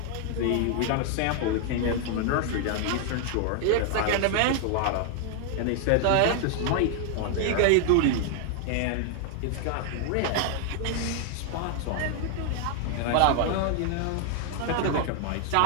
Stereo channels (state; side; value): different; both; correlation 0.00